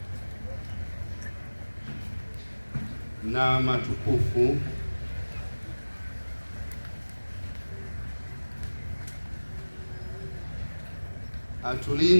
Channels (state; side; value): inverted; both; correlation -1.00